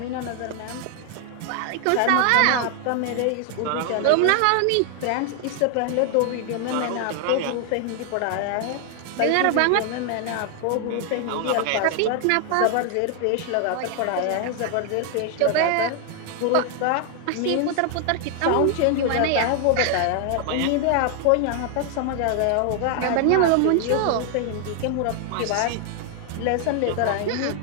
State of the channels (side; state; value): both; different; correlation 0.00